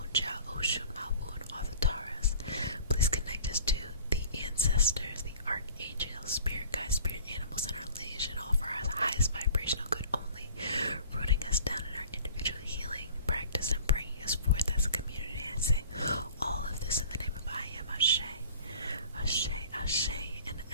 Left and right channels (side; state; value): both; inverted; correlation -0.47